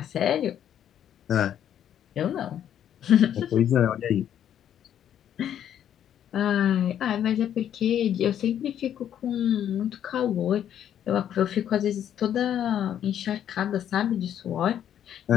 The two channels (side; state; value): right; quieter; 10.0 dB